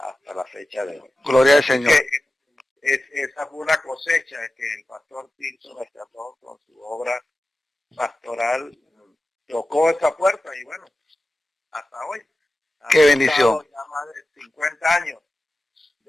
la fecha de hoy. Gloria al Así Señor. que esa fue una cosecha que el pastor Tirso rescató con su obra pastoral, tocó esa puerta y bueno, hasta hoy. Qué bendición. Ya más de 50 años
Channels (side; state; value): both; normal; correlation 0.94